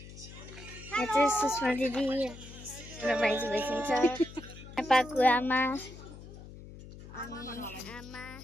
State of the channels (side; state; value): left; noise; hum, 15 dB below the sound